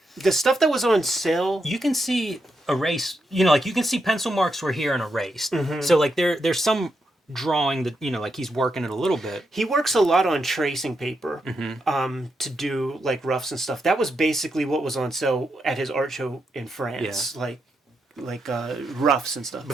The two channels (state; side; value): normal; both; correlation 0.83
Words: the stuff that was on sale. You can see erase, like you can see pencil marks were here and erased. Mm-hmm. So like there's some drawing that, like he's working it a little bit. He works a lot on tracing paper, to do like roughs and stuff. That was basically what was on sale at his art show in France. Yeah. Like roughs and stuff.